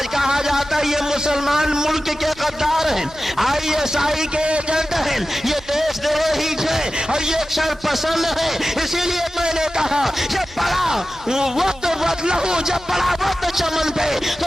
کہا جاتا ہے یہ مسلمان ملک کے غدار ہیں، ISI کے ایجنٹ ہیں، یہ دیش دروہی ہیں، اور یہ شر پسند ہے۔ اسی لیے میں نے کہا جب پڑا وقت لہو، جب پڑا وقت چمن پہ تو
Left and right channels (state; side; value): normal; both; correlation 0.94